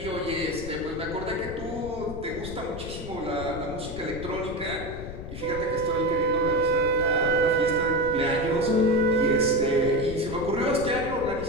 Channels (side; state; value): left; noise; rumble, 10 dB below the sound